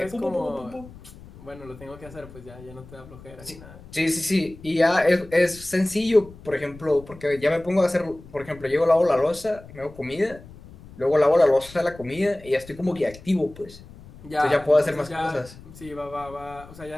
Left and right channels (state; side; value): noise; left; rumble, 19 dB below the sound